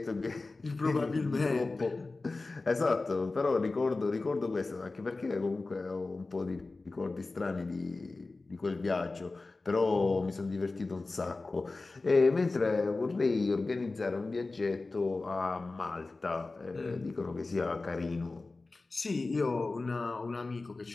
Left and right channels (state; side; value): quieter; right; 3.5 dB